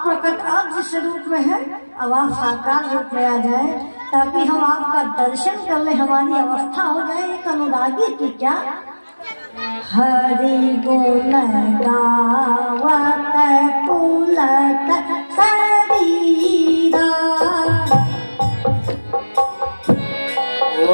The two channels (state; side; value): inverted; both; correlation -1.00